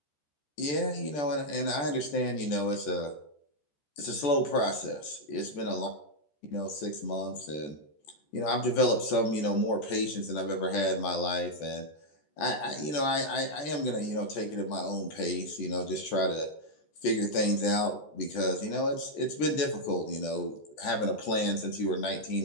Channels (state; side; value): late; right; 14 ms